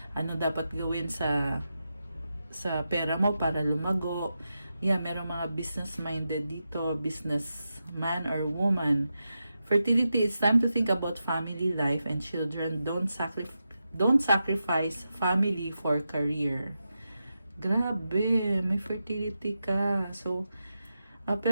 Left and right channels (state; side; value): inverted; both; correlation -0.89